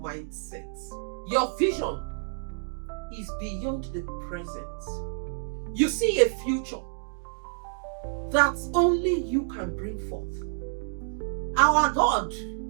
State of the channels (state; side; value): silent; left; digital silence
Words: Your vision is beyond the present. You see a future that only you can bring forth. Our God